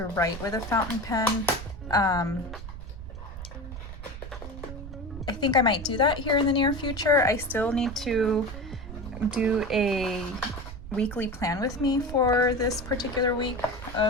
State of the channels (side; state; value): right; noise; rumble, 11 dB below the sound